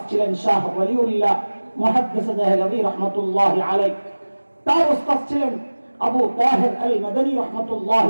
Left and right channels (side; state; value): both; inverted; correlation -1.00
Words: ছিলেন শাহ ওয়ালিউল্লাহ মুহাদ্দিস দেহলভী রাহমাতুল্লাহি আলাইহি। তার উস্তাদ ছিলেন আবু তাহির আল মাদানী